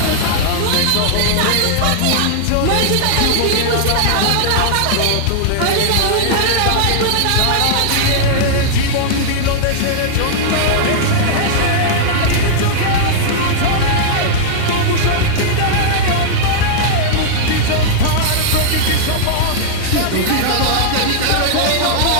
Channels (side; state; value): both; different; correlation -0.01